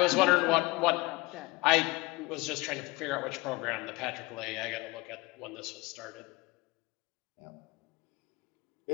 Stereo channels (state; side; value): quieter; right; 22.5 dB